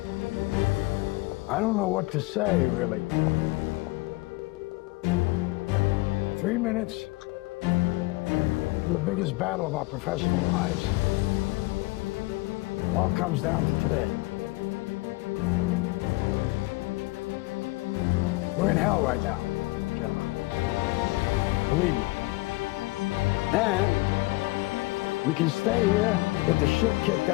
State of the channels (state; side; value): quieter; right; 22.5 dB